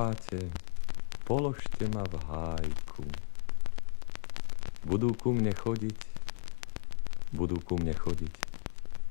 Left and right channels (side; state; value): right; silent; digital silence